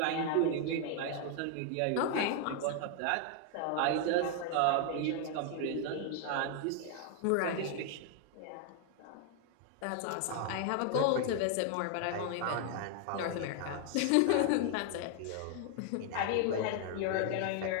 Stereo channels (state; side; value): different; both; correlation 0.00